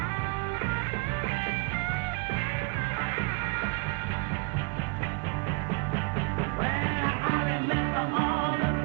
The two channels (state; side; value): quieter; left; 29.4 dB